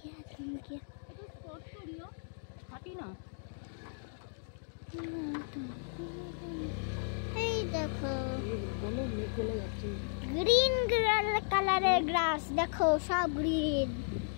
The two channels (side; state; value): right; silent; digital silence